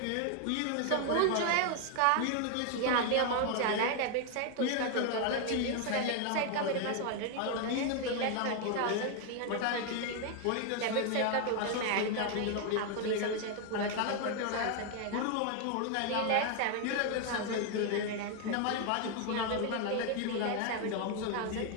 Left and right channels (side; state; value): both; different; correlation 0.01